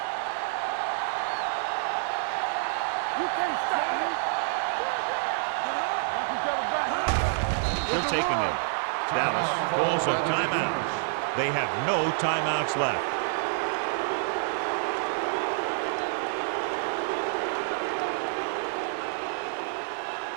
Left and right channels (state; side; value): silent; left; digital silence